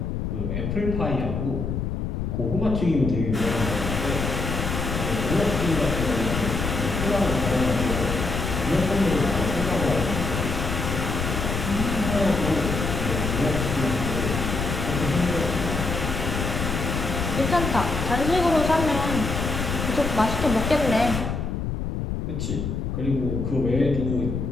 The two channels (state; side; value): noise; left; rumble, 2 dB below the sound